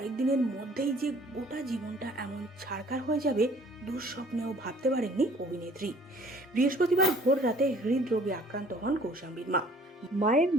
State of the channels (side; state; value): both; normal; correlation 0.55